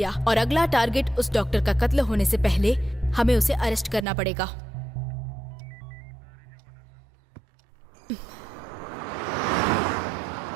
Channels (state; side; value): drops out; left; at 4.0 s